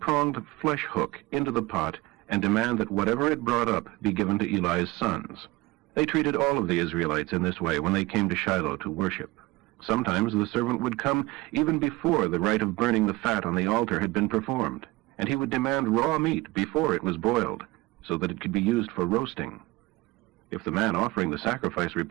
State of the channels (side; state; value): left; quieter; 21.1 dB